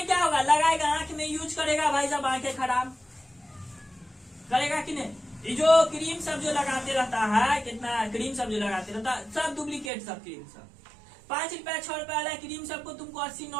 क्या होगा, लगाएगा आंख में यूज करेगा, भाई साहब आंखें खराब करेगा कि नहीं। ये जो क्रीम सब जो लगाते रहता है, कितना क्रीम सब जो लगाते रहता है, सब डुप्लीकेट सब क्रीम सब 5 रुपया 6 रुपया वाला क्रीम सबको तुमको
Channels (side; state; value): left; drops out; at 9.9 s